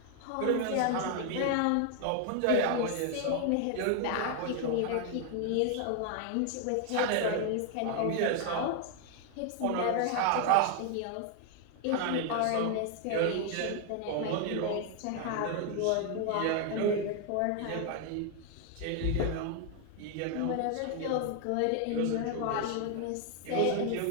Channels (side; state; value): both; different; correlation 0.00